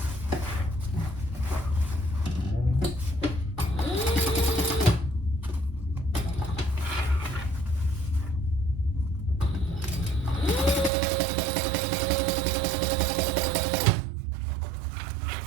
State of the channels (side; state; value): left; drops out; at 10.9 s